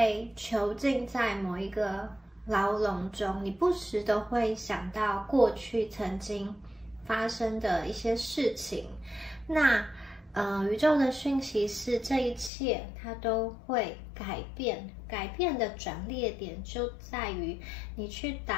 囚禁在某一个牢笼中，你不时的会想到过去曾经发生的一些事情。那宇宙的讯息是这一切它都会改变，改变的转捩点就在于你去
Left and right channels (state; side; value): drops out; right; at 12.5 s